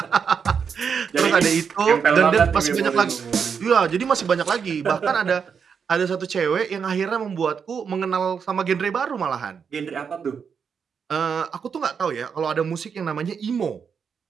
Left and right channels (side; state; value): left; quieter; 6.6 dB